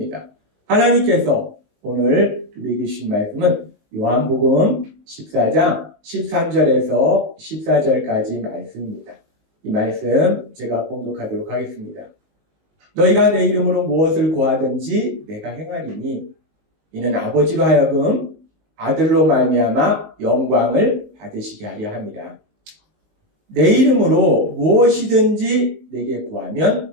하나님께서 오늘 우리에게 주신 말씀은 요한복음 14장 13절에서 14절까지 말씀입니다. 이 말씀 제가 봉독하도록 하겠습니다. 너희가 내 이름으로 무엇을 구하든지 내가 행하리니 이는 아버지로 하여금 아들로 말미암아 영광을 받으시게 하려 함이라. 내 이름으로 무엇이든지 내게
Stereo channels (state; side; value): late; left; 19 ms